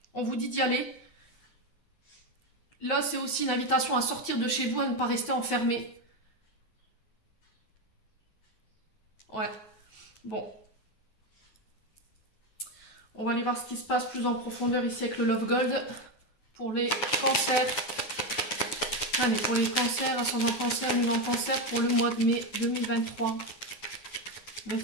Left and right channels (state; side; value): late; right; 9.3 ms